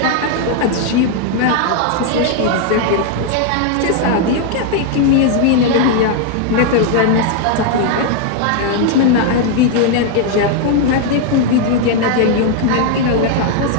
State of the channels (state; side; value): different; both; correlation 0.00